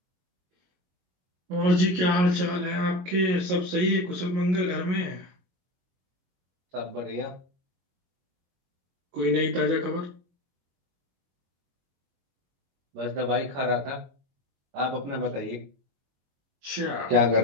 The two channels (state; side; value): late; left; 22 ms